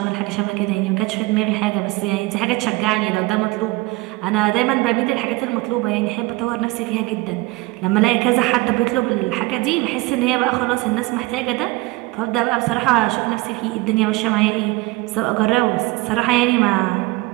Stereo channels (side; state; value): left; quieter; 21.6 dB